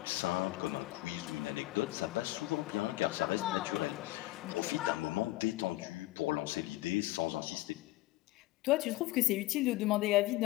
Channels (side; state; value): right; quieter; 18.2 dB